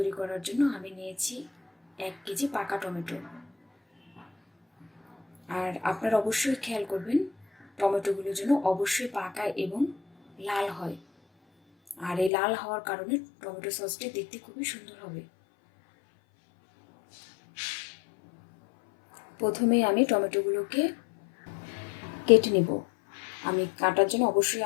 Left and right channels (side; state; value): right; drops out; at 12.3 s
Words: করার জন্য আমি নিয়েছি 1 কেজি পাকা টমেটো। আর আপনারা অবশ্যই খেয়াল করবেন টমেটোগুলো যেন অবশ্যই পাকা এবং লাল হয়। আর এই লাল হওয়ার কারণে টমেটো সসটি দেখতে খুবই সুন্দর হবে। প্রথমেই আমি টমেটোগুলোকে কেটে নেব। আমি কাটার জন্য অবশ্যই